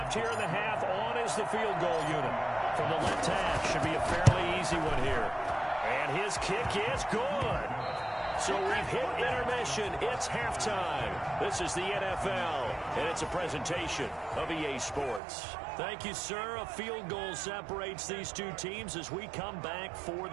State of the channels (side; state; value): left; drops out; at 15.2 s